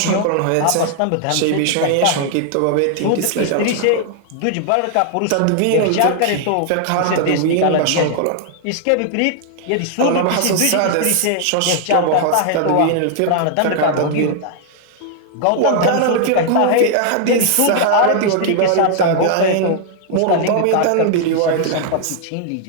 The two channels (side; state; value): both; different; correlation 0.00